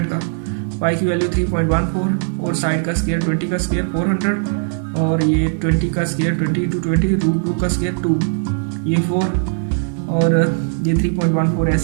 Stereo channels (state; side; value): silent; left; digital silence